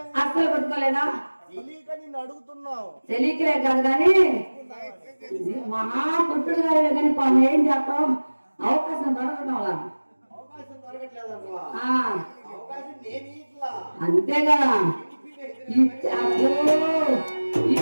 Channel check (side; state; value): both; inverted; correlation -1.00